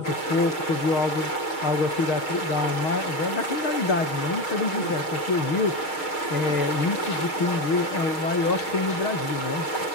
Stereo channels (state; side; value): late; right; 6.4 ms